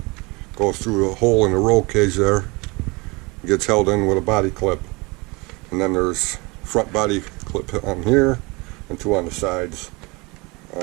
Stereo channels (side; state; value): left; quieter; 26.3 dB